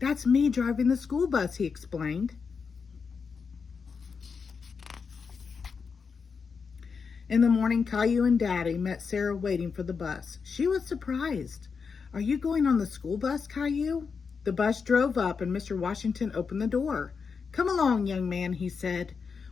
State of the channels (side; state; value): right; quieter; 5.5 dB